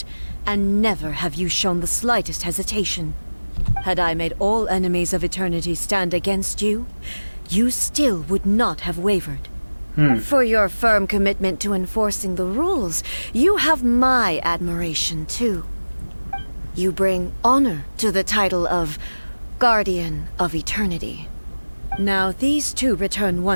and never have you shown the slightest hesitation. Had I made all enemies of eternity stand against you, you still would not have wavered. For your firm commitment to enforcing the rules, you have my admiration too. You bring honor to the title of Guardian of Eternity. Now these two return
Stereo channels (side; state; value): both; inverted; correlation -1.00